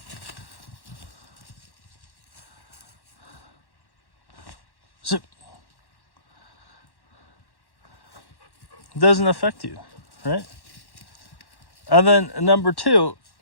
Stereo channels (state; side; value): late; right; 1.1 ms